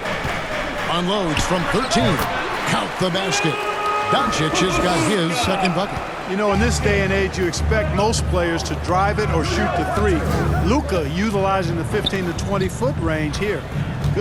Unloads from 13. Count the basket. Doncic has got his second bucket. You know, in this day and age, you expect most players to drive it or shoot the three. Luka utilizing the 15 to 20-foot range here.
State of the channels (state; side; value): identical; both; correlation 1.00